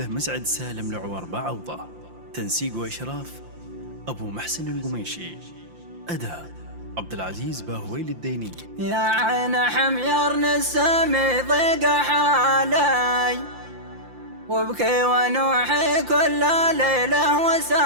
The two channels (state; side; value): late; left; 5.8 ms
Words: مسعد سالم العور بعوضة، تنسيق وإشراف أبو محسن القميشي، أداء عبد العزيز باهويل الديني. يا عين حمير نسمي ضيق حالي وابكي ونوحي كل ليلة